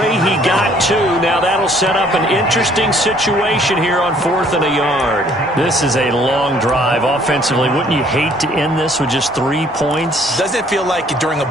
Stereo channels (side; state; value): both; normal; correlation 0.60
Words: He got 2. Now that'll set up an interesting situation here on 4th and a yard. This is a long drive offensively. Wouldn't you hate to end this with just 3 points? Doesn't it feel like during a